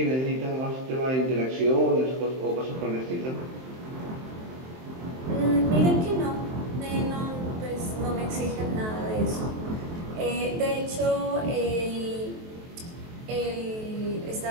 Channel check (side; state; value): left; late; 23 ms